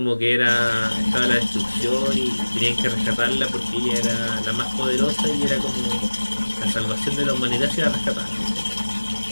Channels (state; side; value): inverted; both; correlation -1.00